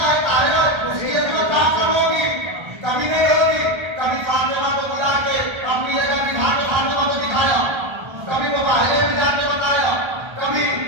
है, ताहिरा है, उसकी इस्मत क्या करोगी? कभी नहीं होगी। कभी फातिमा को बुला के अपनी जगह बिठा के फातिमा को दिखाया, कभी वो बाहरे में जाके बताया, कभी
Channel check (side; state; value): left; late; 1.3 ms